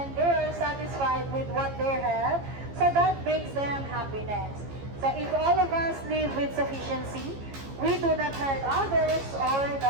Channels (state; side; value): late; left; 15 ms